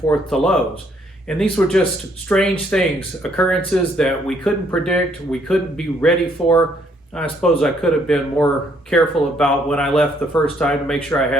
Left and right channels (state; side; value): normal; both; correlation 0.68